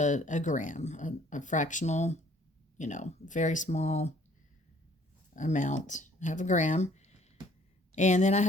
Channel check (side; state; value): both; normal; correlation 0.59